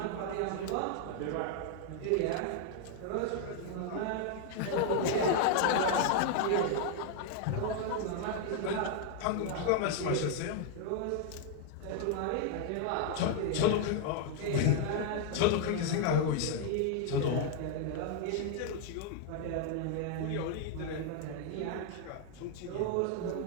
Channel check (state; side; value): different; both; correlation 0.00